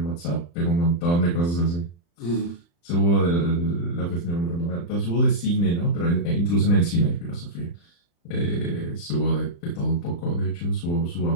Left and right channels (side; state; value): right; late; 35 ms